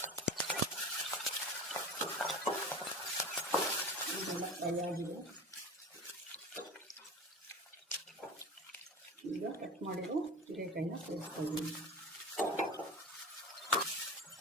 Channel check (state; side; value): normal; both; correlation 0.32